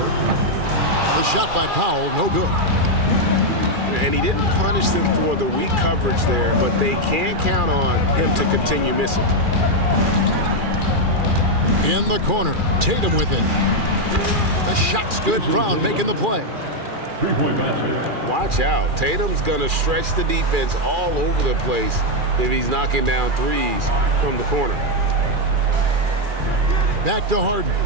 The shot by Powell, no good. And he didn't punish them for the weak coverage there, but they can't count on him to continue missing. In the corner, Tatum with it. The shot's good. Brown making the play. Watch out. Tatum's going to stretch the defense all over the place if he's knocking down threes from the corner. Back to Harden.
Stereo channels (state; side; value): late; left; 2.4 ms